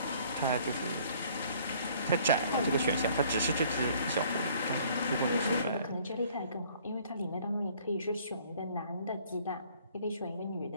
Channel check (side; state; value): both; inverted; correlation -0.58